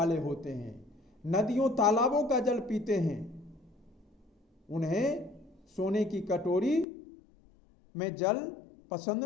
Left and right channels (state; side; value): drops out; right; at 6.9 s